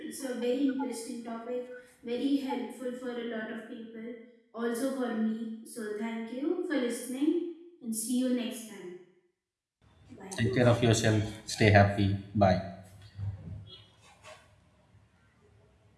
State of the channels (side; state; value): both; identical; correlation 1.00